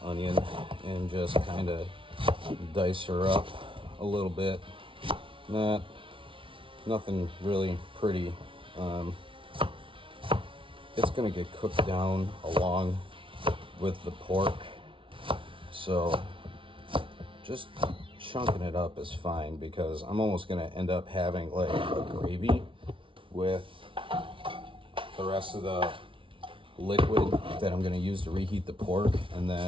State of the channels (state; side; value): late; left; 0.25 ms